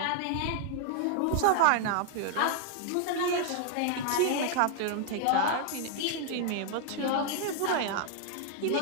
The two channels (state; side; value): different; both; correlation 0.00